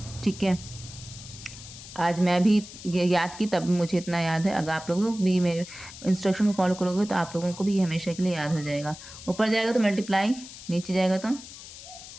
ठीक है। आज मैं भी याद की तब मुझे इतना याद है, अगर आप लोगों को भी मेरे इंस्ट्रक्शन को फॉलो करोगे तो आप लोगों को भी हमेशा के लिए याद हो जाएगा। ऊपर जाएगा तो मल्टीप्लाई, नीचे जाएगा तो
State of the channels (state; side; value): noise; left; hiss, 15 dB below the sound